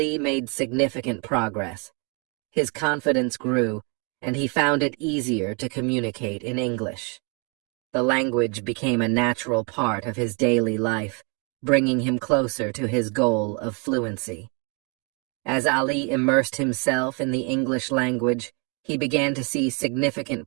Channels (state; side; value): quieter; left; 34.3 dB